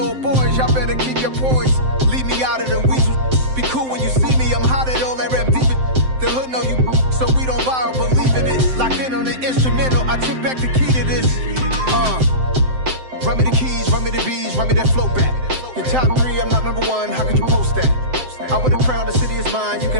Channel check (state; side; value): late; left; 7.7 ms